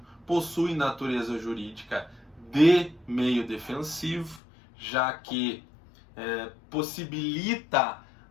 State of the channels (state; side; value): drops out; right; at 4.4 s